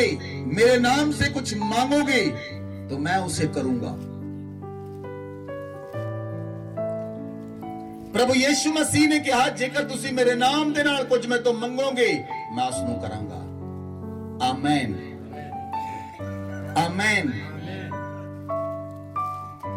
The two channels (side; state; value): both; identical; correlation 1.00